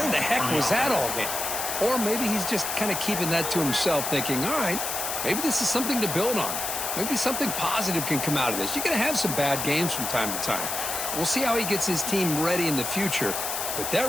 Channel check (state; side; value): noise; left; hiss, 3 dB below the sound